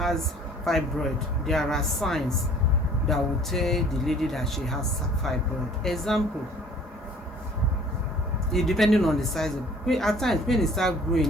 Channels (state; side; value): normal; both; correlation 0.52